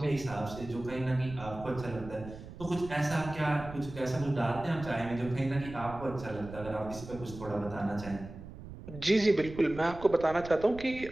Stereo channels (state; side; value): noise; right; rumble, 13 dB below the sound